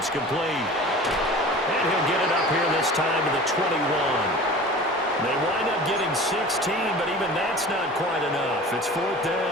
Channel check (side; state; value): both; normal; correlation 0.39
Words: complete. And he'll get it up here this time to the 21. They wind up getting 16, but even that's not quite enough. It's 4th